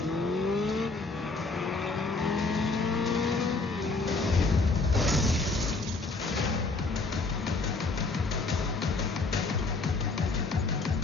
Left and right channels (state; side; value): quieter; right; 3.7 dB